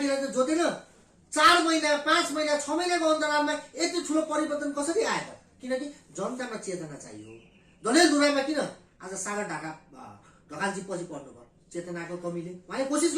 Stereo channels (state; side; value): identical; both; correlation 1.00